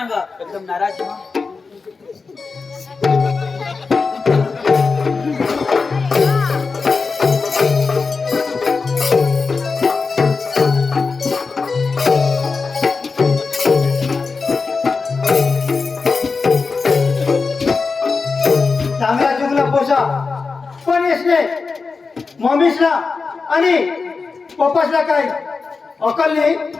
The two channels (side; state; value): right; quieter; 4.5 dB